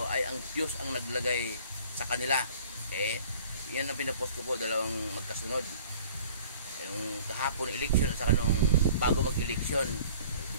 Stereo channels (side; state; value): both; inverted; correlation -0.50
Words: ay ang Diyos ang naglagay sa kanila. Okay? Yan ang pinapost ko po, 2 magkasunod. Yung kahapon election at saka nung bago mag-eleksyon.